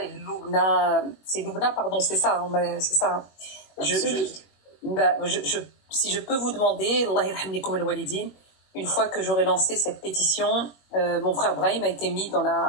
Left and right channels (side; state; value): right; late; 21 ms